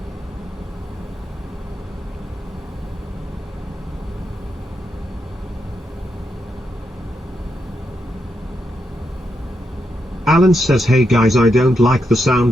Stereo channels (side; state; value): both; normal; correlation 0.83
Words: Alan says hey guys, I don't like the